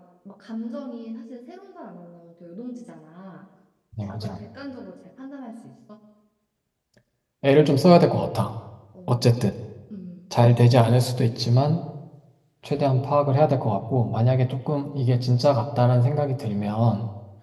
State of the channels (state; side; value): identical; both; correlation 1.00